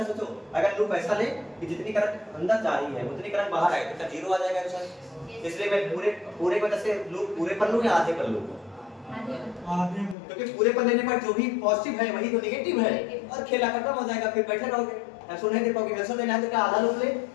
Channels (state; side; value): drops out; right; at 10.2 s